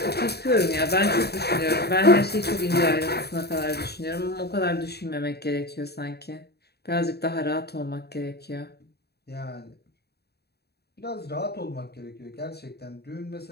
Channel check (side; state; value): right; late; 0.47 ms